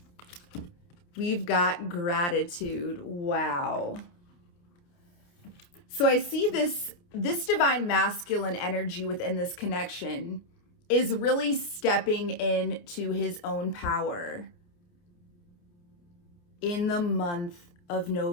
We've got gratitude. Wow. So I see this divine masculine energy within this connection is really stepping into his own power in the month of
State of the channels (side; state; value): right; late; 29 ms